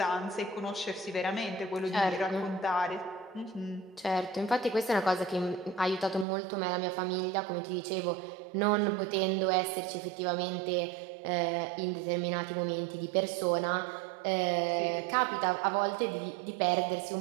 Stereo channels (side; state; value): left; drops out; at 6.2 s